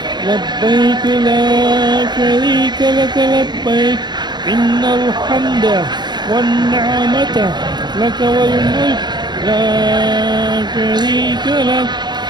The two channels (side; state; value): left; late; 0.21 ms